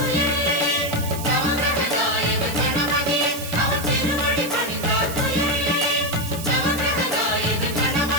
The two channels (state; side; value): noise; right; hiss, 10 dB below the sound